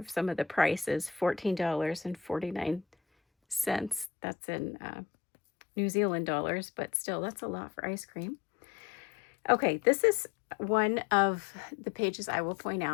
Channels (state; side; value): drops out; right; at 4.1 s